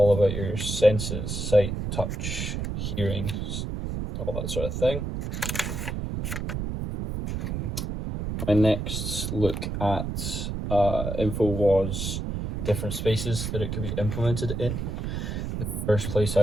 about your senses, sight, touch, hearing, all that sort of thing. My next look at info was different spaces that it could be implemented in. The first place I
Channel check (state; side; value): noise; right; rumble, 3 dB below the sound